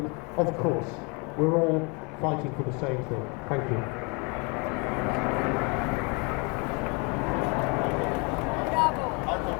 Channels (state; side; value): quieter; right; 31.7 dB